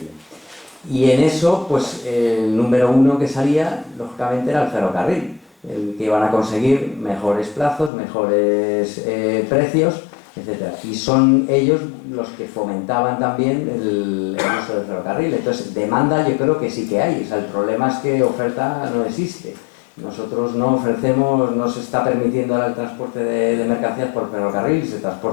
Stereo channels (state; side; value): drops out; right; at 7.9 s